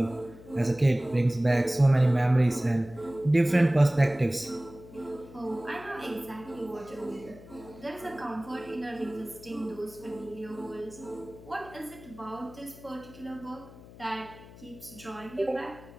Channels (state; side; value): noise; left; hum, 19 dB below the sound